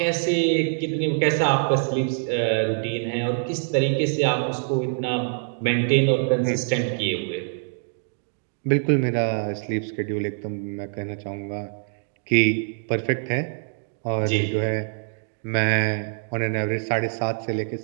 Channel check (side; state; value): left; silent; digital silence